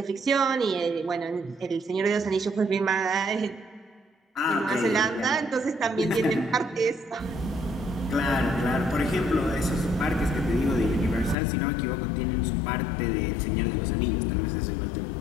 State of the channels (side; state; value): right; drops out; at 11.4 s